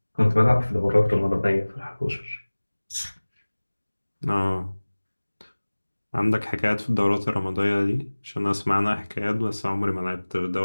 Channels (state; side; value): inverted; both; correlation -1.00